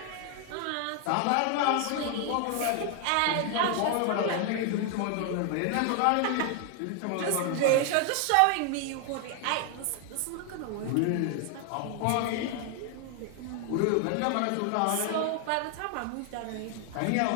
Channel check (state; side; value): different; both; correlation 0.01